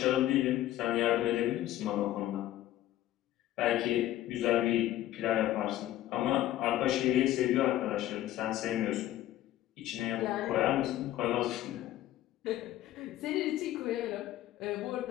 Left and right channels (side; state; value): right; quieter; 14.0 dB